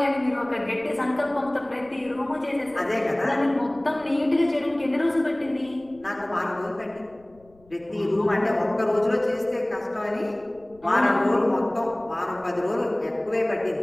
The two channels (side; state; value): left; noise; rumble, 29 dB below the sound